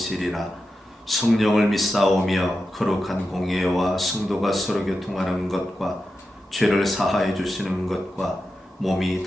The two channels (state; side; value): normal; both; correlation 0.90